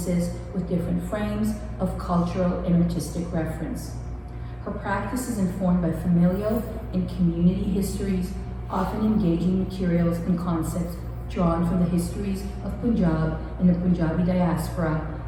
with different frames of cultural and artistic reference. Her practice is informed by familial and community histories, often engaging materials and concepts drawn from the histories of Punjab and the Punjabi diaspora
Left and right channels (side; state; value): both; identical; correlation 1.00